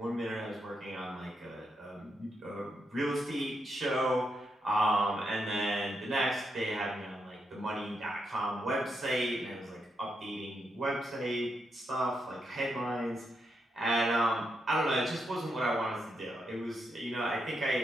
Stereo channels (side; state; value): both; normal; correlation 0.82